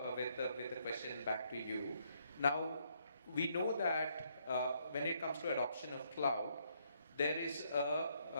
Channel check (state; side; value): inverted; both; correlation -0.72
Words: the question back to you. Now, we know that when it comes to adoption of cloud, there is